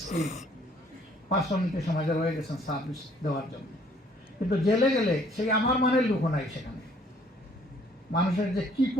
স্কিল পার্সোনালিটি সমাজে রয়ে গেছেন সার্ভিস দেওয়ার জন্য। কিন্তু জেলে গেলে সেই আমার মানের লোক নাই সেখানে। মানুষের যে কি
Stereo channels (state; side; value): normal; both; correlation 0.61